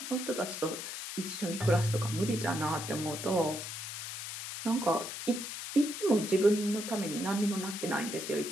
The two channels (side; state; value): left; noise; hiss, 7 dB below the sound